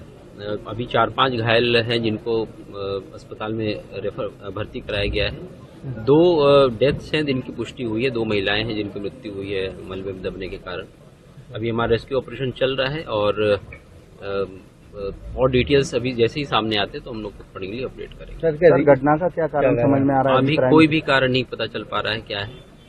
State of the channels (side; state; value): both; identical; correlation 1.00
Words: अभी 4-5 घायल हैं जिनको अस्पताल में भर्ती कराया गया है। 2 डेथ्स हैं जिनकी पुष्टि हुई है, 2 महिलाएं हैं जिनकी मृत्यु हुई है मलबे में दबने के कारण। अभी हमारा रेस्क्यू ऑपरेशन चल रहा है और डिटेल्स अभी जैसे ही सामने आते तो हम लोग अकॉर्डिंगली अपडेट करेंगे। सर, घटना का क्या कारण समझ में आ रहा है? अभी कोई भी कारण नहीं पता चल पा रहा है क्या है।